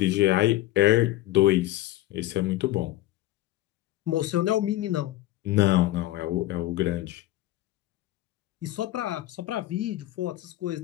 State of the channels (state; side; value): quieter; right; 15.8 dB